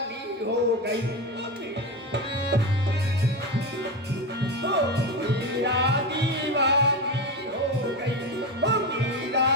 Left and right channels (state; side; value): normal; both; correlation 0.19